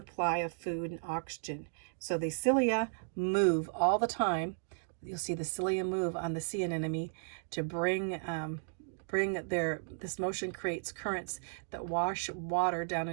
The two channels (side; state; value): left; silent; digital silence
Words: of food and oxygen. So the cilia move all the time. You'll see the cilia move on the sea anemone to bring this motion creates currents that wash water down